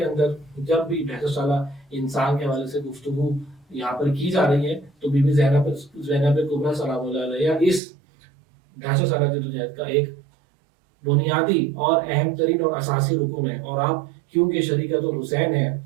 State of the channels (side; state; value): left; drops out; at 7.8 s